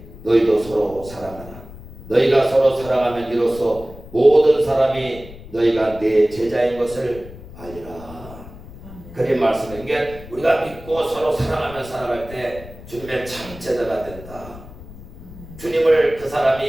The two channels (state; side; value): noise; left; rumble, 16 dB below the sound